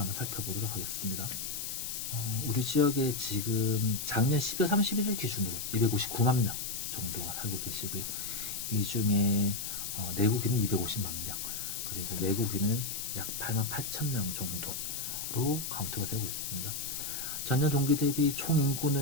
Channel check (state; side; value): noise; left; hiss, 4 dB below the sound